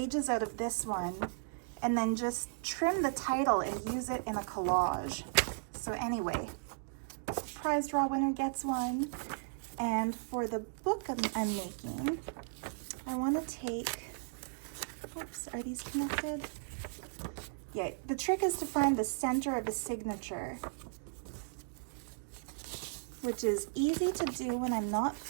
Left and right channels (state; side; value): silent; left; digital silence